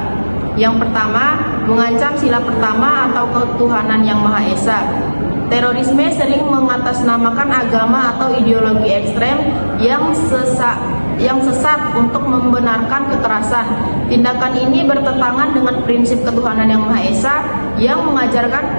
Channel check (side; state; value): both; inverted; correlation -1.00